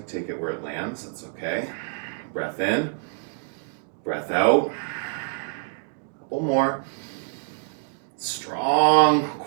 take it where it lands, that's okay. Breath in. Breath out. Couple more. Strong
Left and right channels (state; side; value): silent; left; digital silence